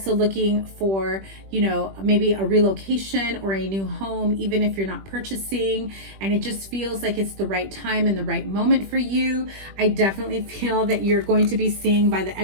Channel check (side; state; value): left; late; 21 ms